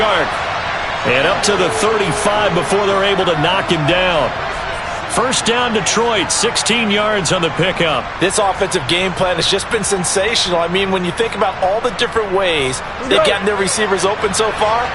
And up to the 35 before they're able to knock him down. 1st down, Detroit. 16 yards on the pickup. This offensive game plan has just been sensational. I mean, when you think about all the different ways they've gotten their receivers open so far,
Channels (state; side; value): identical; both; correlation 1.00